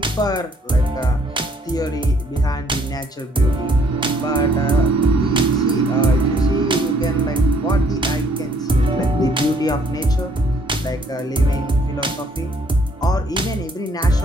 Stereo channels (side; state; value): both; normal; correlation 0.64